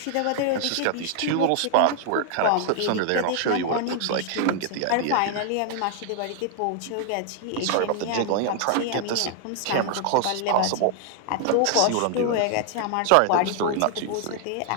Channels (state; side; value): different; both; correlation 0.00